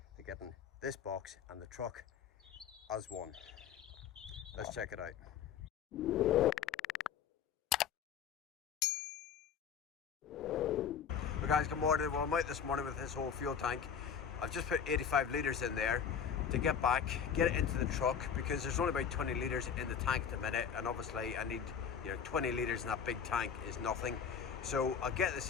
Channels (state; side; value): quieter; right; 7.4 dB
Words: to getting this box and the truck as one. Let's check it out. Well, guys, good morning. Well, I'm out this morning with this whole fuel tank. I've just put 85 litres in there to get back, get it into the truck, because there's only about 20 litres in the tank at the minute, and obviously I need, 20 litres in that big tank is nothing. So I'll get this